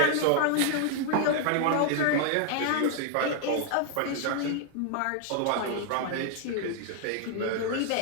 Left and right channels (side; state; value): both; different; correlation 0.00